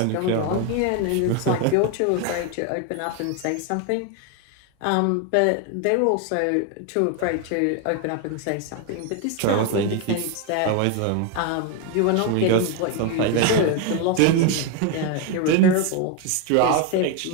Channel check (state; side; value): different; both; correlation 0.01